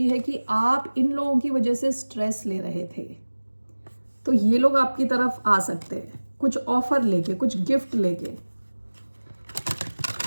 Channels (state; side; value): inverted; both; correlation -1.00